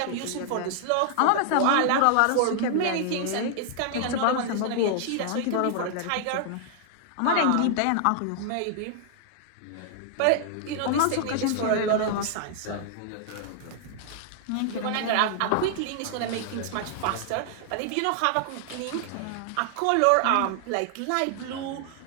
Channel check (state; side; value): different; both; correlation -0.01